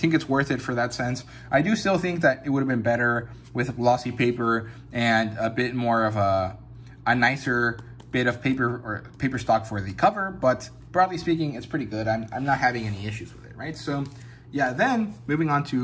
it's worth it for that sense. I do still think that it would have been better with glossy paper and a bit more of a nicer bit of paper or paper stock for the cover, but broadly speaking, it's pretty good. I'm not having any issues with it, right? So yeah, then moving on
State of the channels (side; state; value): both; identical; correlation 1.00